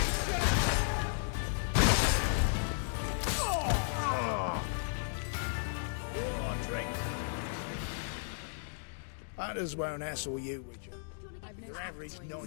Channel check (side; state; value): right; silent; digital silence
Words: Hunters won't hassle you, Witcher. Do you want to get I've no some? smoke Average coins.